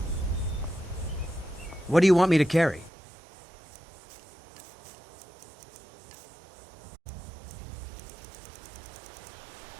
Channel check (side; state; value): left; drops out; at 2.9 s